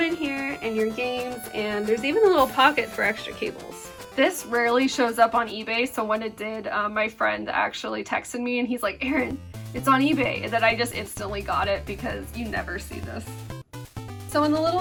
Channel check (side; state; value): both; identical; correlation 1.00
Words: in here and your games, and there's even a little pocket for extra cables. This rarely shows up on eBay, so when it did, my friend actually texted me and he's like, Erin, it's on eBay, and then I just instantly got it because you never see this. So in the little